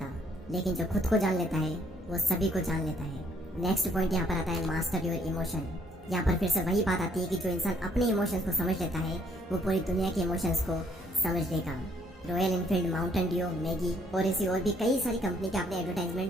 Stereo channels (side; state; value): both; normal; correlation 0.66